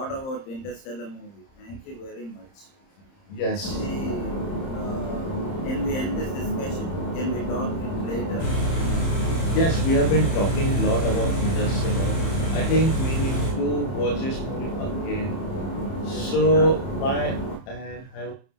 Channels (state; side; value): late; right; 30 ms